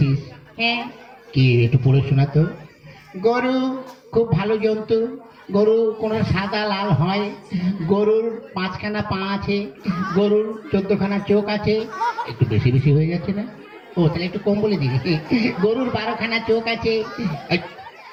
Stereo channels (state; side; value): identical; both; correlation 1.00